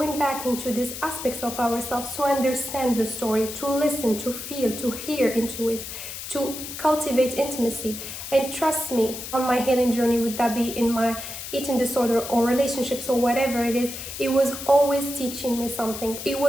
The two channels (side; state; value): left; noise; hiss, 9 dB below the sound